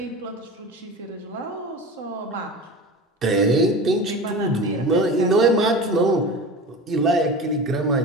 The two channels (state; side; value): normal; both; correlation 0.32